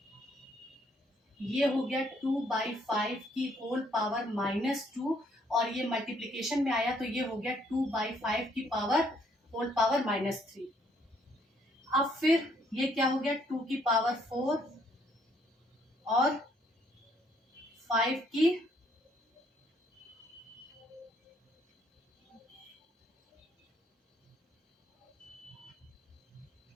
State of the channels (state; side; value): normal; both; correlation 0.67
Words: ये हो गया 2/5 की होल पावर -2 और ये मल्टीप्लीकेशन में आया तो ये हो गया 2/5 की पावर होल पावर -3। अब फिर ये क्या हो गया 2 की पावर 4 और 5 की